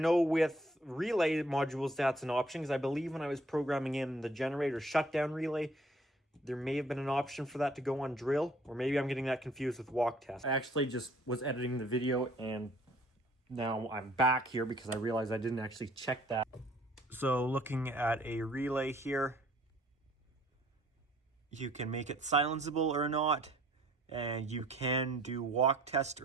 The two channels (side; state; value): both; normal; correlation 0.59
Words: with relay modules that's an option, because I believe when I was programming in the generator shutdown relay, there may have been an option for that to go on drill, or maybe I'm getting that confused with walk test. I actually just was editing the video and now I'm back here because I realized I didn't actually check that. So looking at a relay here, you can make it silenceable or not, and you can do walk test